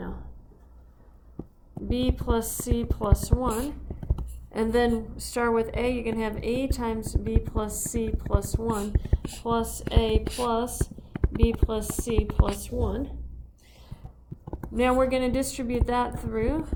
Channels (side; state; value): both; identical; correlation 1.00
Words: B plus C plus 1. And then start with A, you can have A times B plus C plus 1 plus A plus B plus C plus 1. Now we're going to distribute that through.